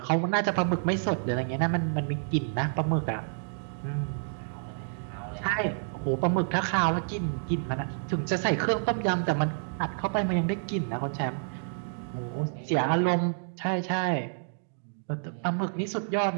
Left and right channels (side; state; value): left; silent; digital silence